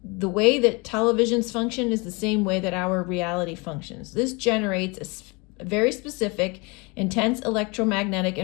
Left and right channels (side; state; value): right; quieter; 28.1 dB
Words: the way that televisions function is the same way that our reality functions. This generates a very specific, intense electromagnetic